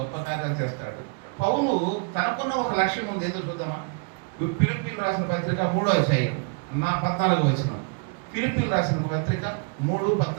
కార్యాలు చేస్తాడు. పౌలు తనకున్న ఒక లక్ష్యం ఉంది. ఏదో చూద్దామా? ఫిలిప్పీయులకు రాసిన పత్రిక 3వ అధ్యాయం 14వ వచనం. ఫిలిప్పీయులకు రాసిన పత్రిక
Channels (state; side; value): quieter; left; 35.0 dB